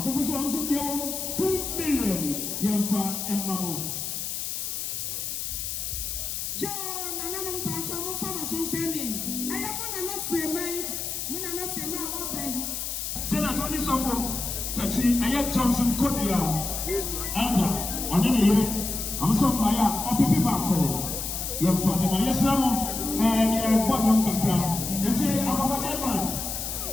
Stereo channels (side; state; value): left; noise; hiss, 4 dB below the sound